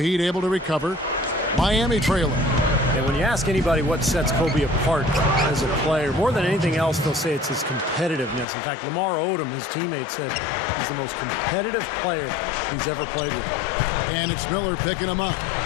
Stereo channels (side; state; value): right; drops out; at 8.5 s